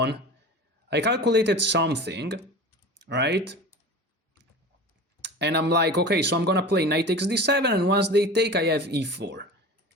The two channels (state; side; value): normal; both; correlation 0.35